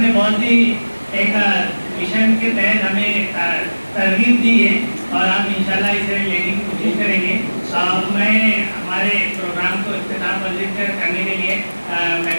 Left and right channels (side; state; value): both; inverted; correlation -1.00